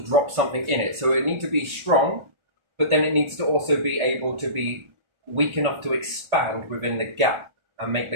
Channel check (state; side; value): late; left; 1.4 ms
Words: drop something in it. So it needs to be strong, but then it needs to also be able to be weak enough to expand within the gap and make